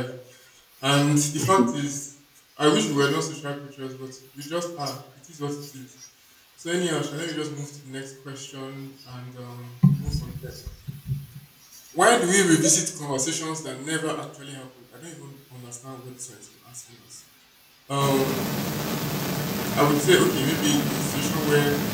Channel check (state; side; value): identical; both; correlation 1.00